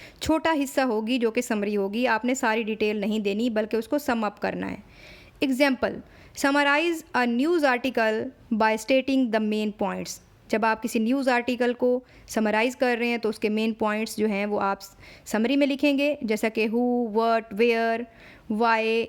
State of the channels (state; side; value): identical; both; correlation 1.00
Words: छोटा हिस्सा होगी जो कि समरी होगी। आपने सारी डिटेल नहीं देनी बल्कि उसको सम अप करना है। Example, summarise a news article by stating the main points. जब आप किसी न्यूज़ आर्टिकल को समराइज़ कर रहे हैं तो उसके मेन पॉइंट्स जो हैं वो आप समरी में लिखेंगे, जैसा कि who, what, where, why